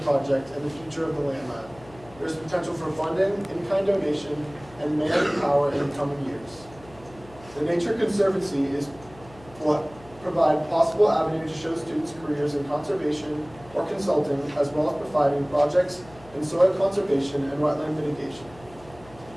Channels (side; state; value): left; noise; hum, 22 dB below the sound